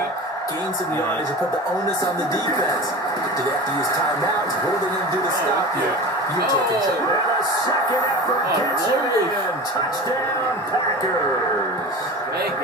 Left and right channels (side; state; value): both; normal; correlation 0.31